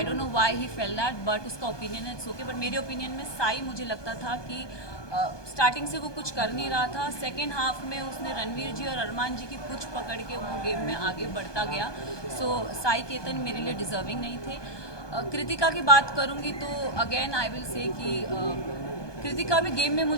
don't know why he fail that, but उसका ओपिनियन है, इट्स ओके। बट मेरे ओपिनियन में साई, मुझे लगता था कि स्टार्टिंग से वो कुछ कर नहीं रहा था। सेकेंड हाफ में उसने रणवीर जी और अरमान जी की पुछ पकड़ के वो गेम में आगे बढ़ता गया। सो साई केतन मेरे लिए डिज़र्विंग नहीं थे। कृतिका की बात करूंगी तो अगेन आई विल से कि कृतिका भी गेम में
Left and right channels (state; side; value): late; right; 1.2 ms